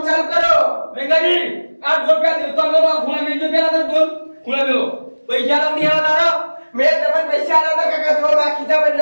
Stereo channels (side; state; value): both; inverted; correlation -1.00